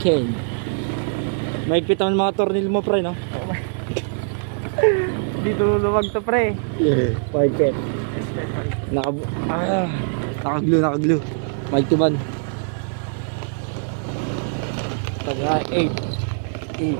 Maigpit ang mga tornil mo pre, no? Dito luwag to pre. Yeah, maigpit. Nakaglue. Maigtuban. Taga 8.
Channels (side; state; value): left; silent; digital silence